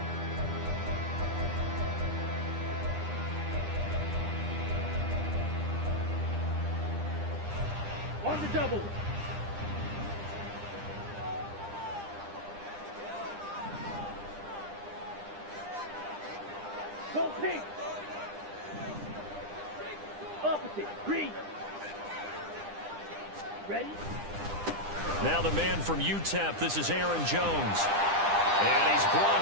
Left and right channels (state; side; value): late; left; 9.9 ms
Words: On the double. Go pink. Opposite. Green. Ready? Now the man from UTEP, this is Aaron Jones. And he's